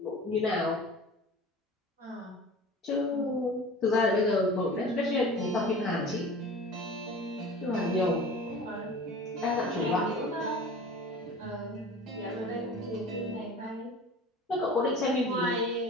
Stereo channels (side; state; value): both; normal; correlation 0.39